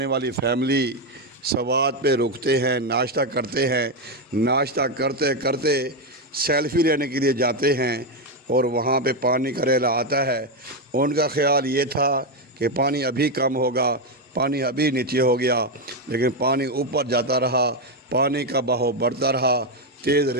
والی فیملی سوات پہ رکتے ہیں، ناشتہ کرتے ہیں، ناشتہ کرتے کرتے سیلفی لینے کے لیے جاتے ہیں اور وہاں پہ پانی کا ریلا آتا ہے۔ ان کا خیال یہ تھا کہ پانی ابھی کم ہوگا، پانی ابھی نیچے ہو گیا، لیکن پانی اوپر جاتا رہا، پانی کا بہاؤ بڑھتا رہا، تیز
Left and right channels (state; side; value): normal; both; correlation 0.06